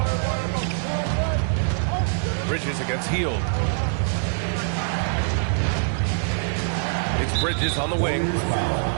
Bridges against Hield. It's Bridges on the wing.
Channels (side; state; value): left; silent; digital silence